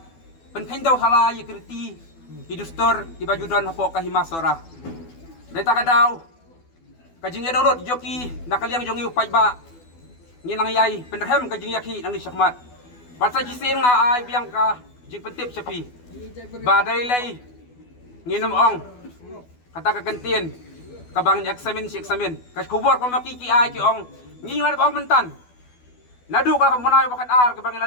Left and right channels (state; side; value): late; right; 12 ms